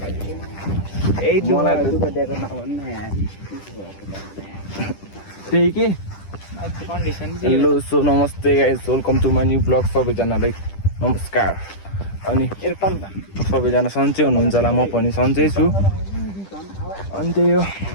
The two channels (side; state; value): right; late; 10 ms